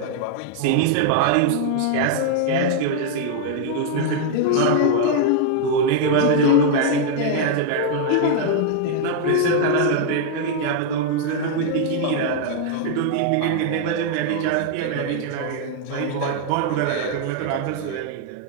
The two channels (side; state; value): both; different; correlation 0.00